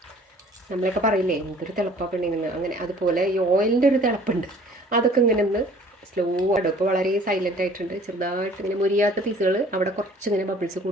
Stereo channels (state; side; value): normal; both; correlation 0.52